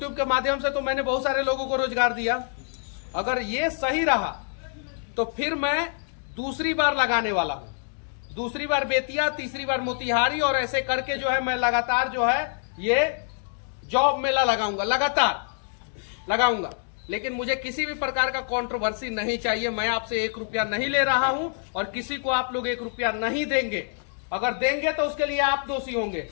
के माध्यम से तो मैंने बहुत सारे लोगों को रोजगार दिया, अगर ये सही रहा तो फिर मैं दूसरी बार लगाने वाला हूं। दूसरी बार बेतिया, तीसरी बार मोतिहारी, और ऐसे करके जो है मैं लगातार जो है ये जॉब मेला लगाऊंगा, लगातार लगाऊंगा। लेकिन मुझे किसी भी प्रकार का कंट्रोवर्सी नहीं चाहिए। मैं आपसे 1 रुपया नहीं ले रहा हूं और किसी को आप लोग 1 रुपया नहीं देंगे। अगर देंगे तो उसके लिए आप दोषी होंगे।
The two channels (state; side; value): silent; right; digital silence